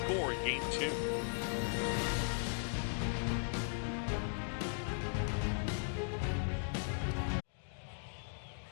in game 2.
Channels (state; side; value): silent; right; digital silence